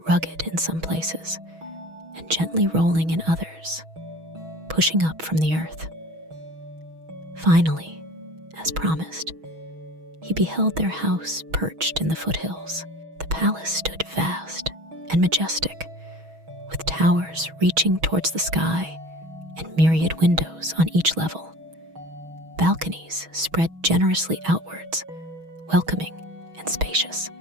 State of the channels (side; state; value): left; late; 6.2 ms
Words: rugged in some places and gently rolling in others, pushing up from the earth. Finally, as promised, he beheld their house perched in the foothills. The palace stood vast and majestic, with towers reaching towards the sky and myriad windows on each level. Balconies spread generously outwards, welcoming and spacious.